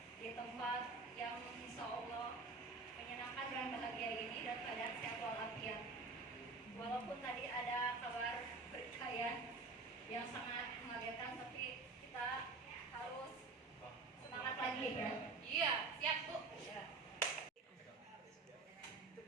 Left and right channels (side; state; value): left; quieter; 3.9 dB